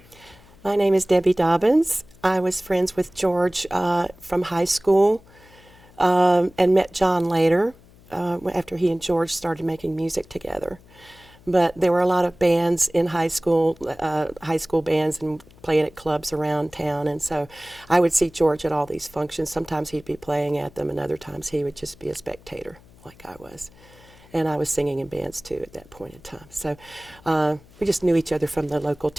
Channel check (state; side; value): noise; left; hum, 25 dB below the sound